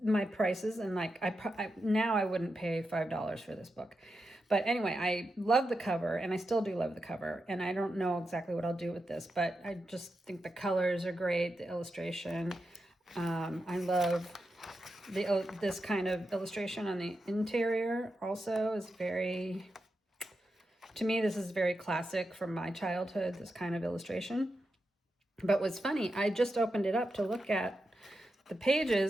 my prices, and like now I wouldn't pay $5 for this book. But anyway, I love the cover, and I still do love the cover, and I don't know exactly what I'll do with this, but I just think the colors are great, the illustration. I love this kind of illustration on the interior also is very To me, this is very classic from my childhood, this kind of illustration. But what's funny, I just opened it up to look at the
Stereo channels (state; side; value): normal; both; correlation 0.88